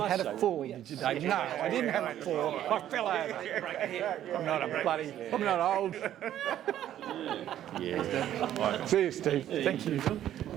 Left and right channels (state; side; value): quieter; left; 11.6 dB